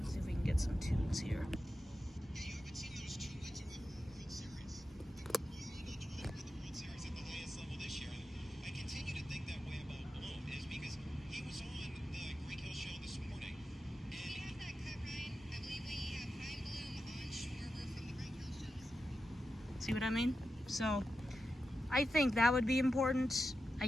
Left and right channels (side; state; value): both; normal; correlation 0.90